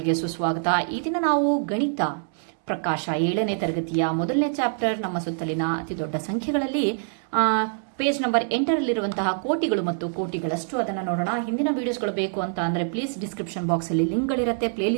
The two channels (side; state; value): left; silent; 62 dB below the other